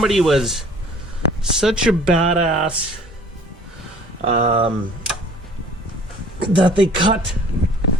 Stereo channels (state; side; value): normal; both; correlation 0.51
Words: was such a badass that they cut